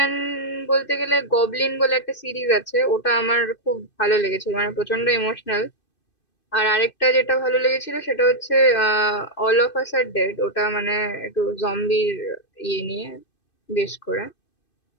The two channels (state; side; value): late; right; 2.6 ms